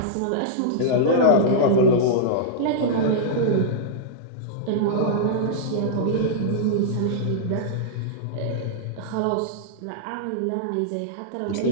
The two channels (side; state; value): both; different; correlation -0.02